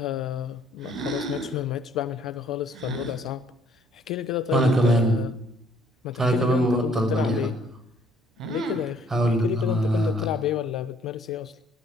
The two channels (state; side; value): normal; both; correlation 0.62